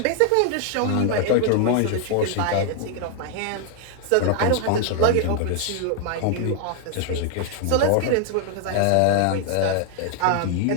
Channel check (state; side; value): different; both; correlation 0.00